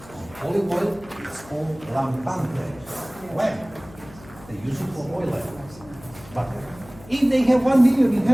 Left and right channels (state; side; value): noise; left; hum, 21 dB below the sound